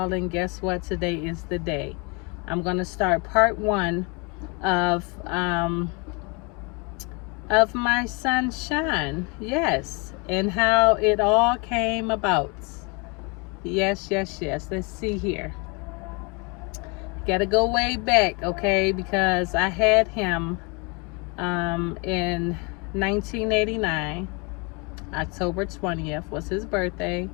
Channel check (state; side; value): quieter; right; 31.1 dB